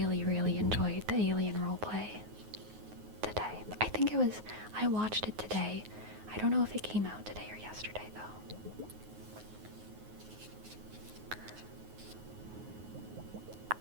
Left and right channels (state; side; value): late; left; 9.4 ms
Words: really enjoyed the alien roleplay today. I watched it today. I don't know if it came out today or yesterday, though.